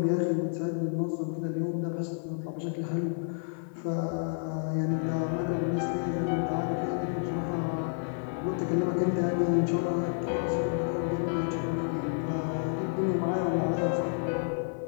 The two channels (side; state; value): right; silent; 55 dB below the other